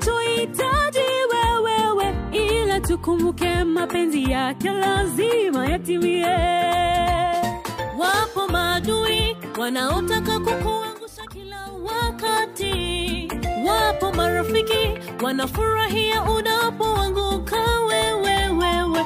wewe, ila tukumbuke mapenzi yake lazima yatimie. Wapo maadui wanaotaka kukuangusha kila wakati, wapo marafiki wanafurahia unapoanguka wewe.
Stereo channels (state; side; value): identical; both; correlation 1.00